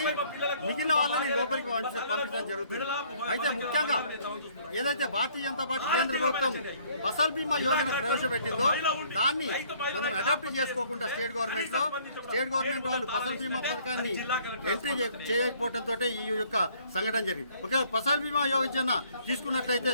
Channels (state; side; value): inverted; both; correlation -0.60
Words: మిగిలిన వాళ్ళని లోపలికి పంపించడం జరుగుతుంది. అయితే ముఖ్యంగా ఏదైతే భారతీయ జనతా పార్టీ కేంద్ర ప్రభుత్వం ఫసల్ బీమా యోజన ప్రవేశపెట్టిందో దాన్ని మనం అడాప్ట్ చేసుకోకుండా స్టేట్ గవర్నమెంట్ వాళ్ళు ఫసల్ బీమా పథకాన్ని ఎంట్రీ చేయకపోవడంతో ఈ యొక్క సంఘటన జరిగింది. ఓకే, ఫసల్ బీమా యోజన తీసుకున్నట్లయితే